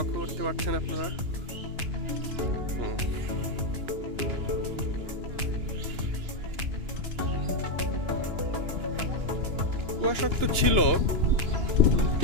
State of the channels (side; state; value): left; late; 2.9 ms